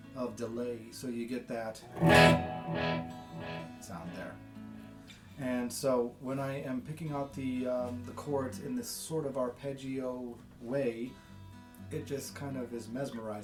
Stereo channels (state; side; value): identical; both; correlation 1.00